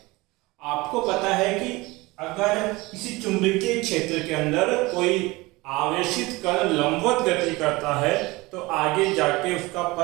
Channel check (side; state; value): left; quieter; 22.2 dB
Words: आपको पता है कि अगर किसी चुंबकीय क्षेत्र के अंदर कोई आवेशित कण लंबवत गति करता है तो आगे जाके उसका